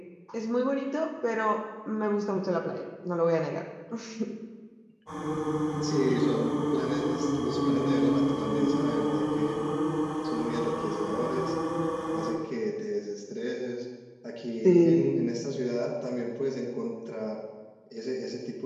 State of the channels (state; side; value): identical; both; correlation 1.00